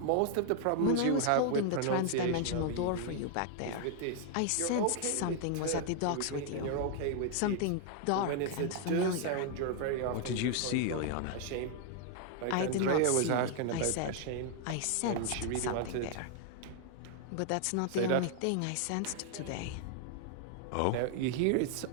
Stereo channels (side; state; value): both; different; correlation 0.00